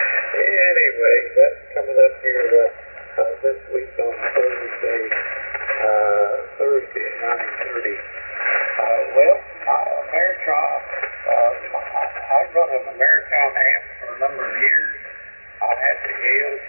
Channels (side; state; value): both; inverted; correlation -1.00